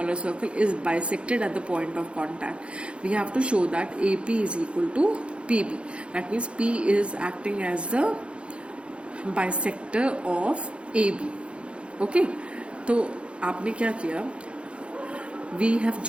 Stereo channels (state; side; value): late; left; 0.058 ms